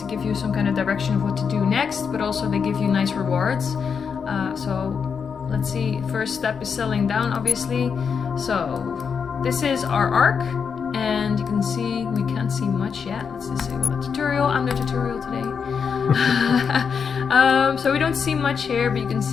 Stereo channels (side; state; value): right; quieter; 6.3 dB